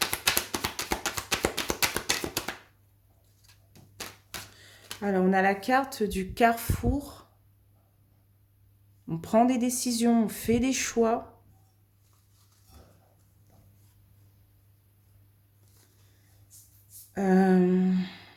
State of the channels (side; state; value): both; identical; correlation 1.00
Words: Alors, on a la carte du carrefour. On prend des décisions, on fait des choix.